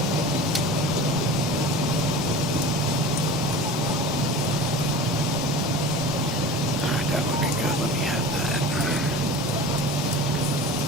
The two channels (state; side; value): normal; both; correlation 0.36